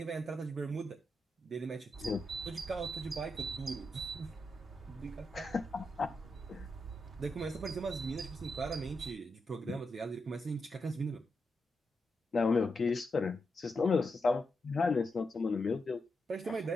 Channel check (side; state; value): both; normal; correlation 0.86